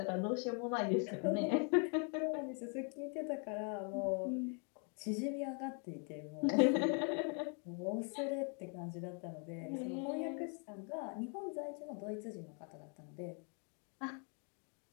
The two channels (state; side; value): quieter; right; 39.9 dB